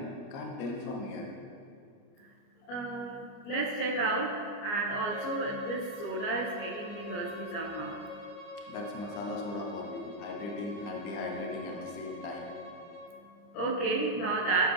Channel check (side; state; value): right; late; 29 ms